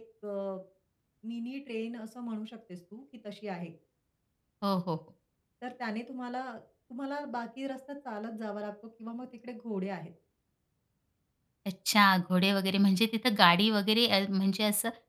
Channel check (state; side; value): identical; both; correlation 1.00